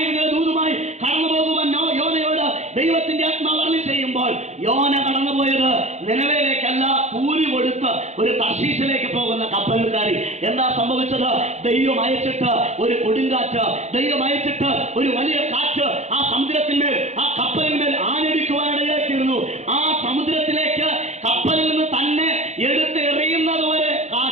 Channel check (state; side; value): late; left; 0.33 ms